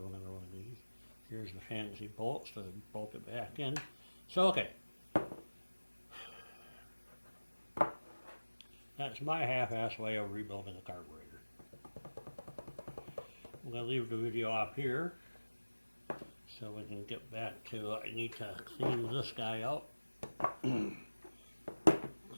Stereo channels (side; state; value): both; inverted; correlation -1.00